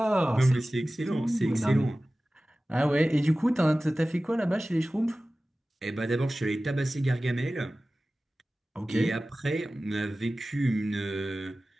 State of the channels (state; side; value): normal; both; correlation 0.96